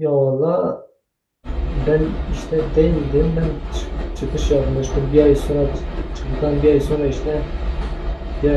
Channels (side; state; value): both; identical; correlation 1.00